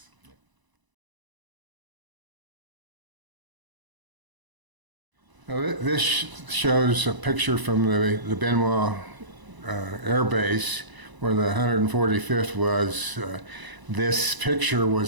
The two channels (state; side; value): late; left; 1.0 ms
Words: Now, this shows a picture from the Bien Hoa Air Base where the 145th was. This picture